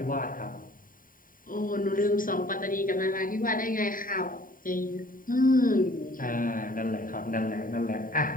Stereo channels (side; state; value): right; late; 0.40 ms